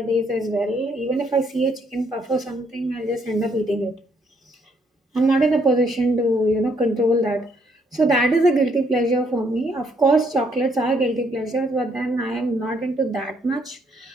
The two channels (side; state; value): both; normal; correlation 0.70